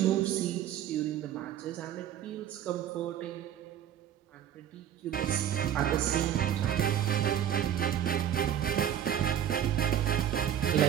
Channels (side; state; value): left; quieter; 10.2 dB